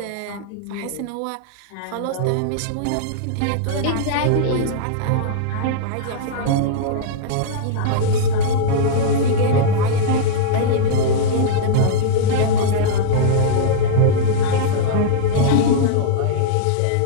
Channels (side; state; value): both; different; correlation -0.02